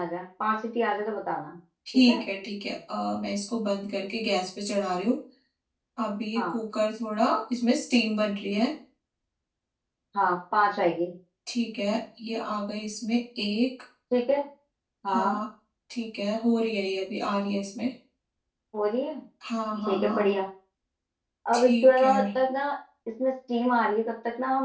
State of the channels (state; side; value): identical; both; correlation 1.00